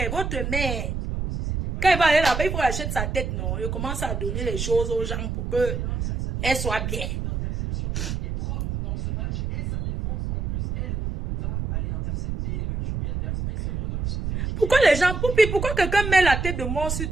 votre mère. Quand elle va aller là-bas, il faut acheter sa tête, non? Il commence à donner les choses aux gens pour qu'elle soit bien. Pourquoi les gens, pourquoi quelqu'un met la tête de mort sur...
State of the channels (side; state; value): right; noise; rumble, 3 dB below the sound